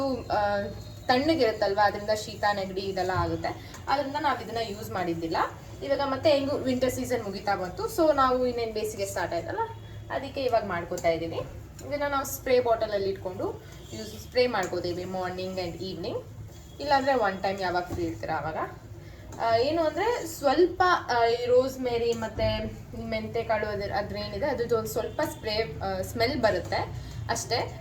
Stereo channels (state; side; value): identical; both; correlation 1.00